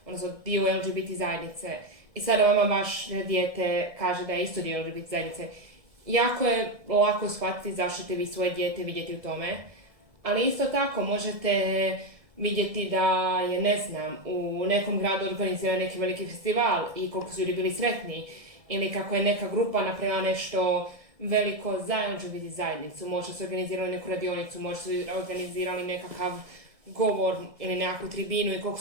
odnosno dio LGBT zajednice, i sada vama baš dijete kaže da je isto dio LGBT zajednice. Jako je lako shvatiti zašto ćete vi svoje dijete vidjeti u tome, ali isto tako možete vidjeti da je, u nekom gradu organizira neki veliki festival i koliko su ljudi bili sretni, ili kako je neka grupa napravila nešto veliko zajedno biti zajednicu, možda su organizirali neku radionicu, možda su organizirali nekakav govor ili nekakvu tribinu i koliko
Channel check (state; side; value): late; left; 1.7 ms